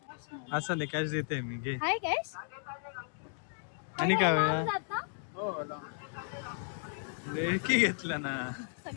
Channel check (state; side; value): silent; right; digital silence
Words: असं नाही कॅश देते मी घे. हाय कॅश. आणि काय होया जात ना? ढेकी घेतला ना.